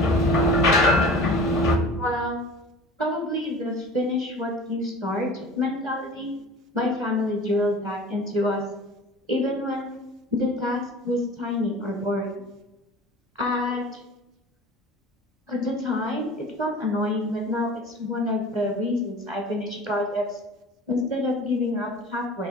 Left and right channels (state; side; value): normal; both; correlation 0.41